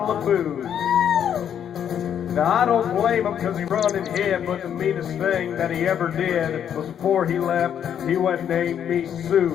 of booze. Now, I don't blame him because he run and hid, but the meanest thing that he ever did was before he left, he went and named me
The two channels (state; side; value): quieter; right; 9.0 dB